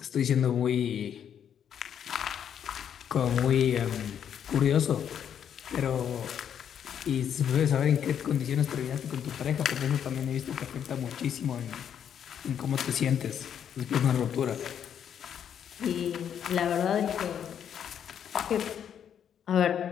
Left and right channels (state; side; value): quieter; right; 8.8 dB